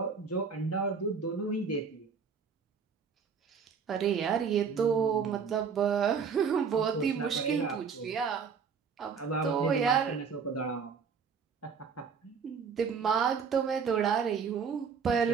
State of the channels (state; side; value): quieter; left; 6.1 dB